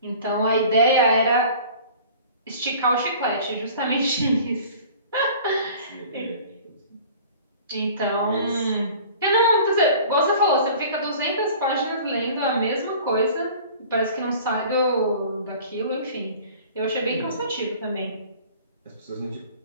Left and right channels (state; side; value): inverted; both; correlation -0.45